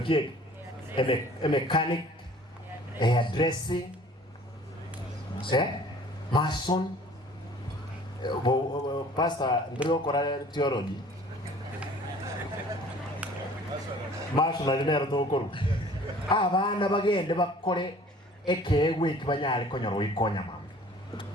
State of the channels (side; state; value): both; normal; correlation 0.50